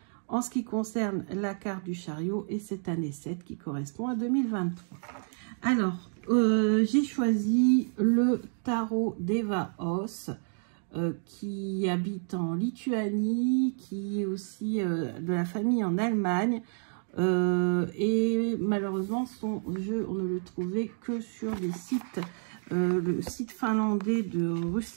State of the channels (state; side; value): silent; left; 58 dB below the other